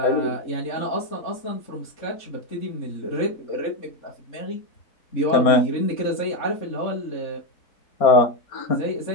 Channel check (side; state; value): right; late; 4.3 ms